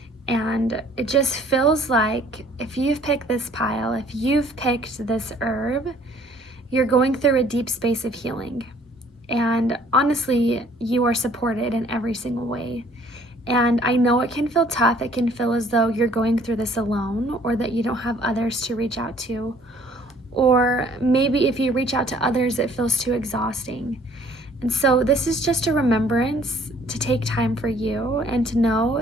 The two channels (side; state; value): both; normal; correlation 0.58